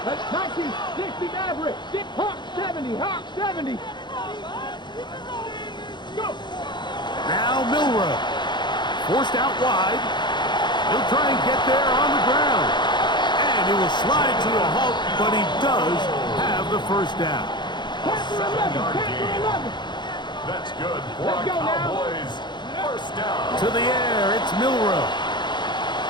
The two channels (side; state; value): right; late; 0.22 ms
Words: That's 1960 Maverick. Hawk 70. Hawk 70. Go. Now Milrow. Forced out wide. He'll try and get there on the ground. And he will slide to a halt, but he does have the 1st down. 7-yard gain. That's good for Let's our go now. Cowboys. 1st down. To the air, it's Milrow.